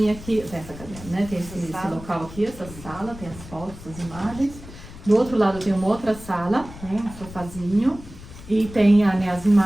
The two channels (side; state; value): left; noise; rumble, 15 dB below the sound